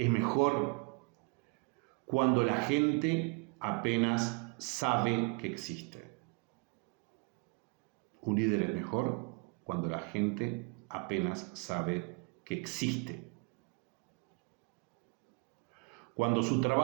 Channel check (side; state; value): left; quieter; 31.6 dB